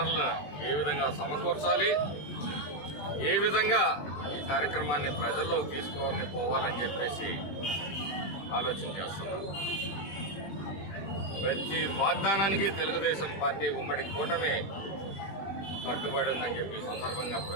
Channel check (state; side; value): late; right; 20 ms